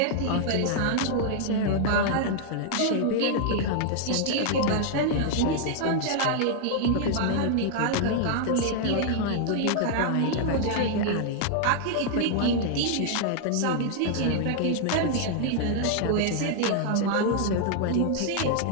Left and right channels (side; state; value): both; different; correlation 0.00